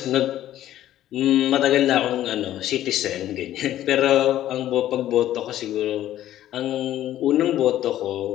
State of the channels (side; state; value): right; quieter; 12.9 dB